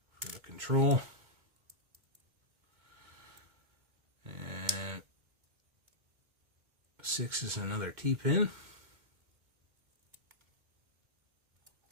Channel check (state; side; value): late; left; 2.1 ms